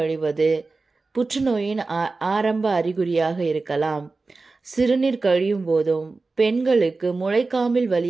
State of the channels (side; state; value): left; quieter; 3.8 dB